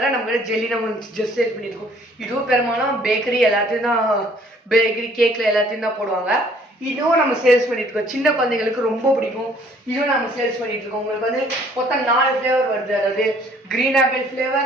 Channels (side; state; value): both; normal; correlation 0.59